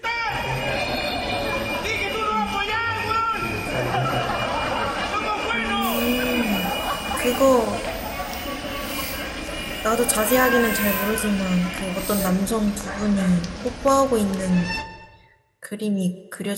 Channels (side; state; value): both; identical; correlation 1.00